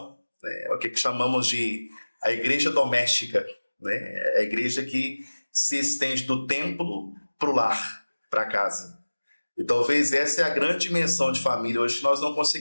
né? É o que chamamos de a igreja doméstica, né? É a igreja que se estende do templo para o lar, para casa. E talvez essa é a grande dimensão de família hoje que nós não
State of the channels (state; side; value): inverted; both; correlation -1.00